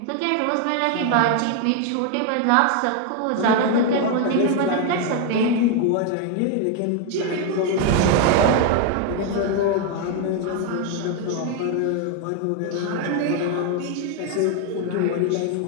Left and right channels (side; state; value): both; different; correlation 0.01